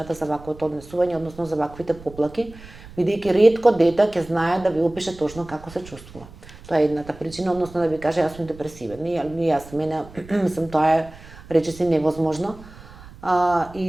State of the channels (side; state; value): right; noise; rumble, 19 dB below the sound